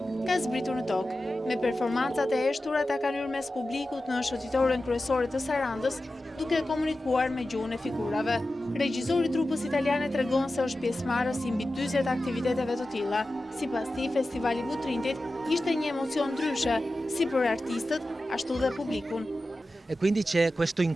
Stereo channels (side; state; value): both; normal; correlation 0.94